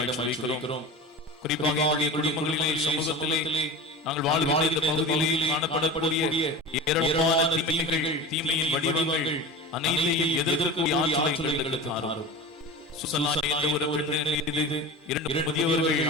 என்று வைக்கிறோம். குறிப்பாக எங்களுடைய குடும்பங்களிலே, சமூகத்திலே, நாங்கள் வாழ்கின்ற இந்த பகுதியிலே காணப்படக்கூடிய ஏராளமான தீமைகள், தீமையின் வடிவங்கள் அனைத்தையும் எதிர்க்கக்கூடிய ஆற்றலை எங்களுக்கு தாரும். சுசலா என்ற ஒரு பெண்ணின் மீது 2 முதியவர்கள்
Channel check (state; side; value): normal; both; correlation 0.31